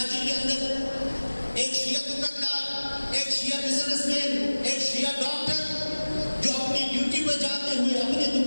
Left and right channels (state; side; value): inverted; both; correlation -1.00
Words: کے اندر، ایک شیعہ دکاندار، ایک شیعہ بزنس مین، ایک شیعہ ڈاکٹر جو اپنی ڈیوٹی پر جاتے ہوئے، اپنے